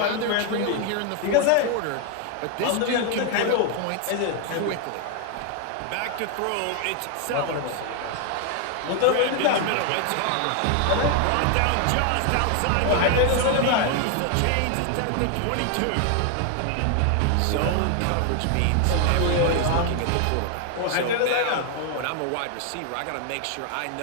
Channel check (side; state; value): both; different; correlation 0.00